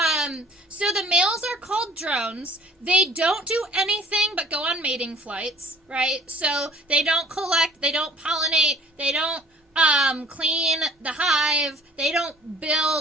So the males are called drones. They don't do anything but go on mating flights, right? So they don't collect, they don't pollinate, they don't clean the hive, they don't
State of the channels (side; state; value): both; normal; correlation 0.51